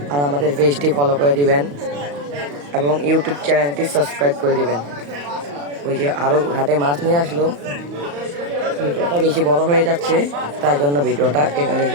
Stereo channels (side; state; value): left; late; 35 ms